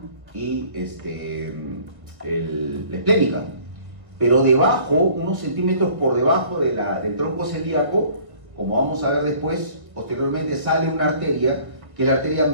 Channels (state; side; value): late; left; 1.4 ms